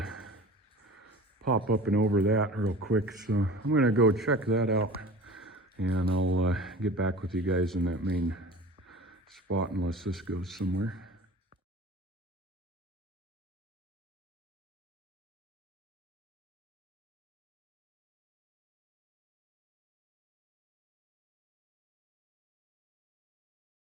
pop up and over that real quick. So I'm gonna go check that out and I'll get back with you guys in that main spot unless this goes somewhere.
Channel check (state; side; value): normal; both; correlation 0.39